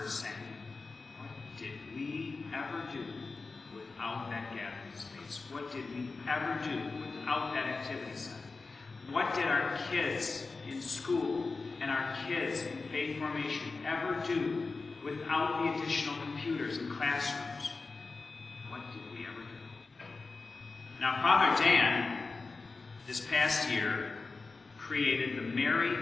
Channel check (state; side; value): quieter; right; 4.0 dB